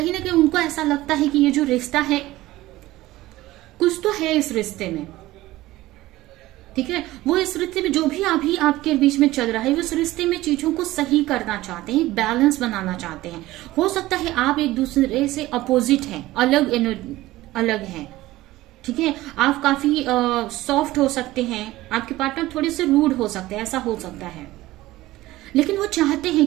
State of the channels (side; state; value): left; quieter; 17.2 dB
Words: ना कहीं उनको ऐसा लगता है कि ये जो रिश्ता है, कुछ तो है इस रिश्ते में। ठीक है, वो इस रिश्ते में जो भी अभी आपके बीच में चल रहा है, वो इस रिश्ते में चीजों को सही करना चाहते हैं, बैलेंस बनाना चाहते हैं। हो सकता है आप एक दूसरे से अपोजिट हैं, अलग हैं। ठीक है, आप काफी सॉफ्ट हो सकते हैं, आपके पार्टनर थोड़े से रूड हो सकते हैं, ऐसा हो सकता है, लेकिन वो चाहते हैं